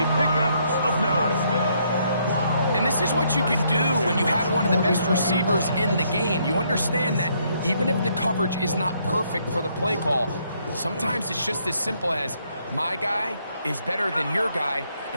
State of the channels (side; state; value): both; inverted; correlation -0.71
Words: pickup of 9. And this is what you can do when you have one of the best receivers in the game. You understand that even if the coverage is not perfect for the play call, sometimes it's just as simple as my guy is better than your guy,